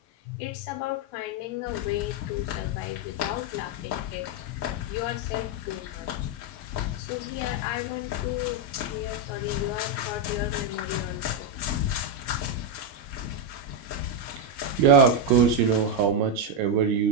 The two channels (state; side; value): normal; both; correlation 0.03